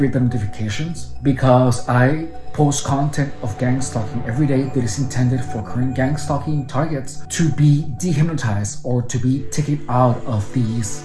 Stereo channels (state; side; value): identical; both; correlation 1.00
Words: the notifications, because I post content of gang stalking every day that is intended for current gang stalking targets to be dehypnotized or to be taken out of these